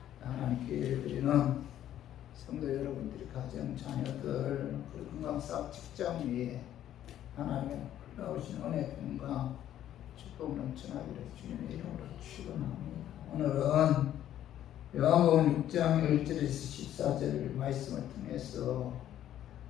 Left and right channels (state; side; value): quieter; right; 11.6 dB